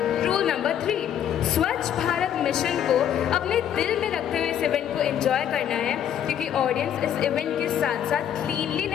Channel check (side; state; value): right; quieter; 9.8 dB